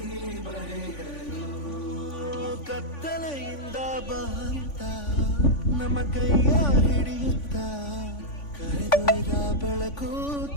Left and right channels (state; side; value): late; right; 3.5 ms